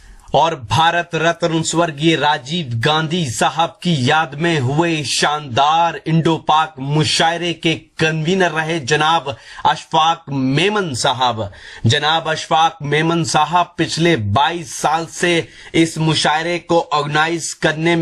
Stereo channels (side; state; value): both; identical; correlation 1.00